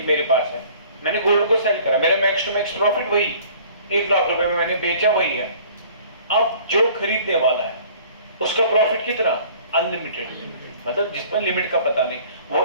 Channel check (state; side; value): inverted; both; correlation -0.51